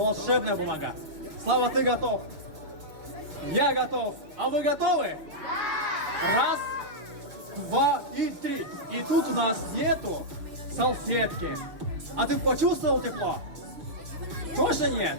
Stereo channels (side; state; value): left; late; 6.5 ms